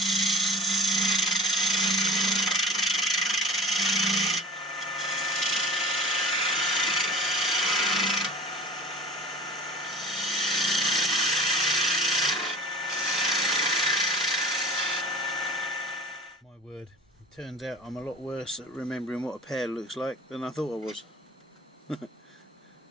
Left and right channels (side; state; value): both; normal; correlation 0.38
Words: out I'm a lot worse at remembering what a pear looks like than I thought I was.